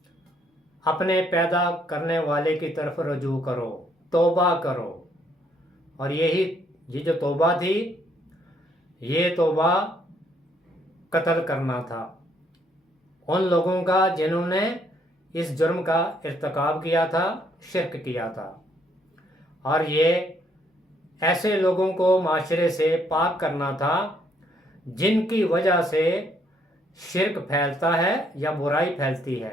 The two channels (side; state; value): both; normal; correlation 0.69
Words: اپنے پیدا کرنے والے کی طرف رجوع کرو، توبہ کرو۔ اور یہ جو توبہ تھی، یہ توبہ قتل کرنا تھا ان لوگوں کا جنہوں نے اس جرم کا ارتکاب کیا تھا، شرک کیا تھا۔ اور یہ ایسے لوگوں کو معاشرے سے پاک کرنا تھا جن کی وجہ سے شرک پھیلتا ہے یا برائی پھیلتی